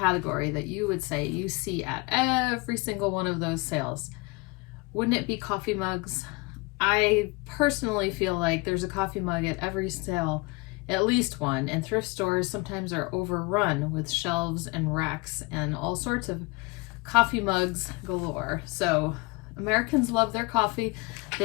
that you would say you see at every single one of those sales? Wouldn't it be coffee mugs? I personally feel like there's a coffee mug at every sale, at least one, and thrift stores sometimes are overrun with shelves and racks and all sorts of coffee mugs galore. So Americans love their coffee.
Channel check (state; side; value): quieter; right; 26.4 dB